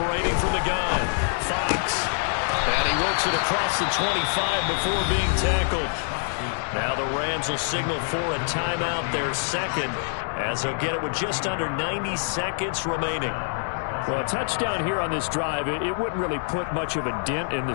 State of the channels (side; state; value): right; silent; 61 dB below the other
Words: from the gun, Fox. And he works it across the 25 before being tackled. Now the Rams will signal for a timeout, their 2nd, as they'll get it with just under 90 seconds remaining. Well, a touchdown here on this drive, it wouldn't really put much of a dent in the